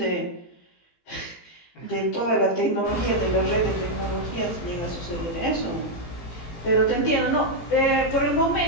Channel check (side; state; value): right; late; 18 ms